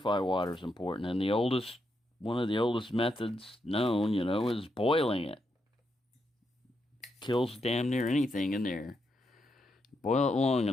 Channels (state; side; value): normal; both; correlation 0.82